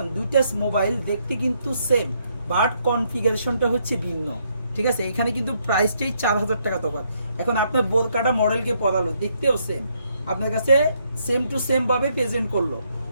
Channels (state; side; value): inverted; both; correlation -0.73